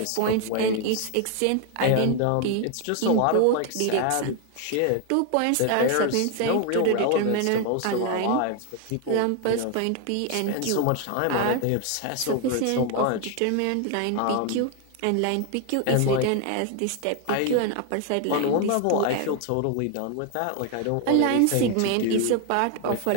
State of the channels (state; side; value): different; both; correlation 0.01